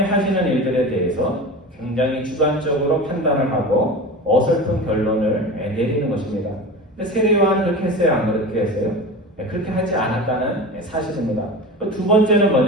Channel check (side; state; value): both; normal; correlation 0.31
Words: 하시는 일들에 대해서 굉장히 주관적으로 판단을 하고 어설픈 결론을 내리는 것입니다. 근데 세례 요한은 그렇게 했어요? 안 그렇게 했어요? 그렇게 하지 않았다는 사실입니다. 두 번째는